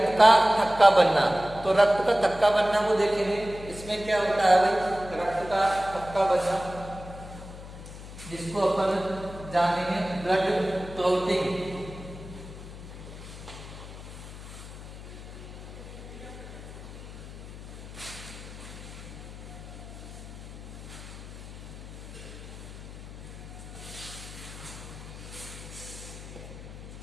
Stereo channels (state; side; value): noise; left; hum, 13 dB below the sound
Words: का थक्का बनना। तो रक्त का थक्का बनना वो देखेंगे। इसमें क्या होता है भाई, रक्त का थक्का बनना, जिसको अपन जानेंगे ब्लड क्लॉटिंग।